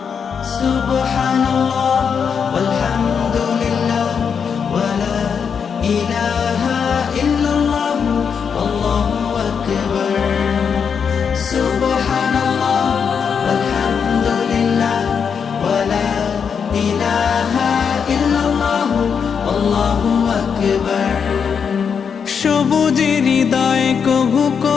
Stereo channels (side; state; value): right; quieter; 6.7 dB